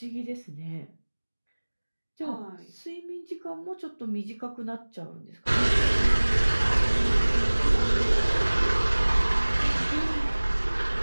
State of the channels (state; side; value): inverted; both; correlation -1.00